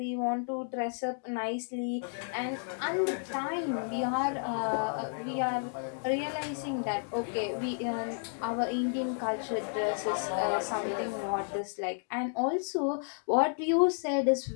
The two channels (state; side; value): silent; right; digital silence